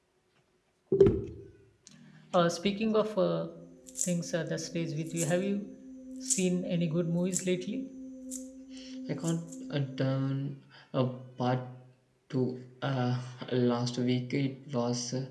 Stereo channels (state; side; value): identical; both; correlation 1.00